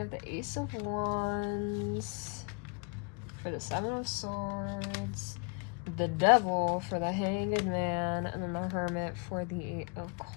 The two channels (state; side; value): quieter; right; 36.0 dB